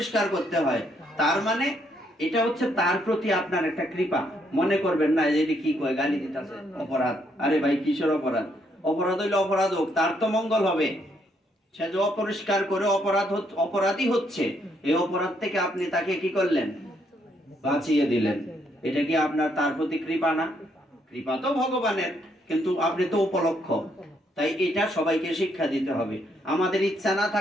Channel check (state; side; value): normal; both; correlation 0.73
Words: করতে হয়। তার মানে এটা হচ্ছে তার প্রতি আপনার একটা কৃপা। মনে করবেন না যে কি কয় গালি দিতেছে, অপরাধ। আরে ভাই কিসের অপরাধ? অপরাধ হইলে অপরাধ হোক, তার তো মঙ্গল হবে। সে যে অপরিষ্কার করে অপরাধী হচ্ছে, এই অপরাধ থেকে আপনি তাকে কি করলেন, বাঁচিয়ে দিলেন। এটা কি আপনার তার প্রতি কৃপা না? কৃপা তো ভগবানের, কিন্তু আপনি তো উপলক্ষ। তাই এটা সবাইকে শিক্ষা দিতে হবে। আমাদের ইচ্ছা না